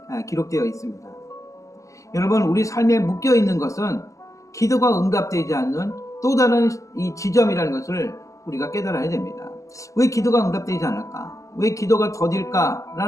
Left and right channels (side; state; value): right; late; 0.16 ms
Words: 기록되어 있습니다. 여러분, 우리 삶에 묶여 있는 것은 기도가 응답되지 않는 또 다른 이 지점이라는 것을 우리가 깨달아야 됩니다. 왜 기도가 응답되지 않을까? 왜 기도가 더딜까?